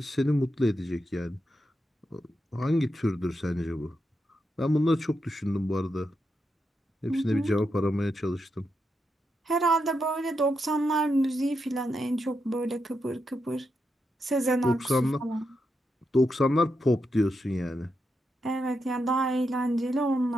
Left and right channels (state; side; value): normal; both; correlation 0.85